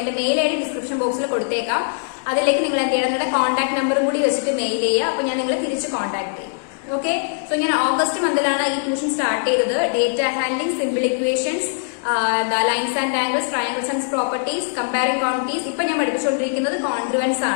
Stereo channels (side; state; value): right; silent; digital silence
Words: മെയിൽ ഐ ഡി ഡിസ്ക്രിപ്ഷൻ ബോക്സിൽ കൊടുത്തേക്കാം. അതിലേക്ക് നിങ്ങൾ എന്ത് ചെയ്യണം, നിങ്ങളുടെ കോൺടാക്ട് നമ്പറും കൂടി വെച്ചിട്ട് മെയിൽ ചെയ്യുക. അപ്പൊ ഞാൻ നിങ്ങളെ തിരിച്ച് കോൺടാക്ട് ചെയ്യും. ഓക്കെ, സോ ഞാൻ ഓഗസ്റ്റ് മന്തിലാണ് ഈ ട്യൂഷൻ സ്റ്റാർട്ട് ചെയ്തത്. Data handling, simple equations, lines and angles, triangles and properties, comparing quantities. ഇപ്പൊ ഞാൻ പഠിപ്പിച്ചുകൊണ്ടിരിക്കുന്നത് കോൺഗ്രുവൻസ്